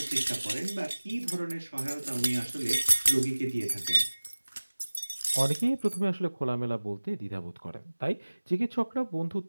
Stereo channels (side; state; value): both; inverted; correlation -1.00